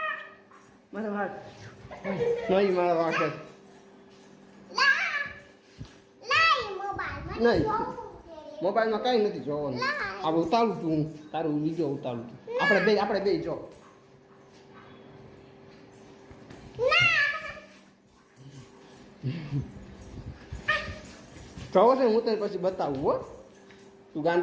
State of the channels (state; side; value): identical; both; correlation 1.00